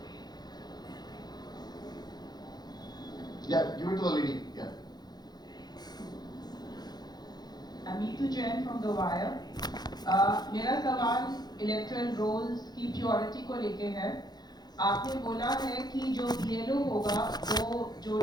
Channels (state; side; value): late; right; 0.20 ms